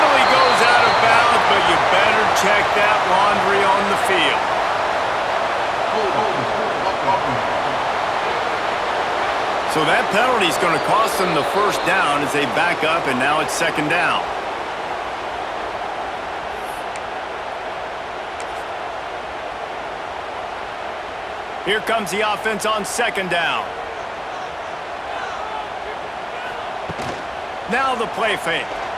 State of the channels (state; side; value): identical; both; correlation 1.00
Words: goes out of bounds, but you better check that laundry on the field. So that penalty is going to cost them the first down as they back up, and now it's 2nd down. Here comes the offense on 2nd down. Now the play fake.